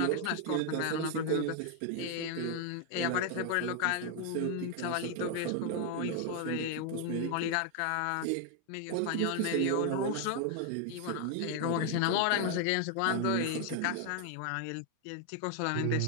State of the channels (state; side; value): different; both; correlation 0.00